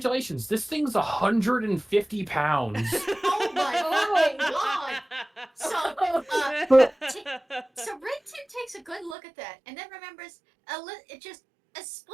this thing's 150 pounds. oh my fucking god! So, uh, But t- so Rintintin takes a good look at that and then remembers it just a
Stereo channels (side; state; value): left; drops out; at 9.2 s